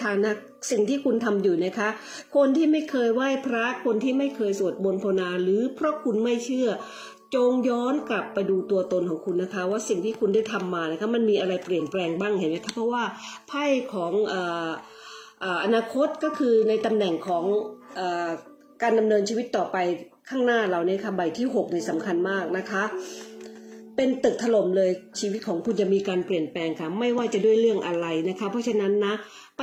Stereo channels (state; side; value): identical; both; correlation 1.00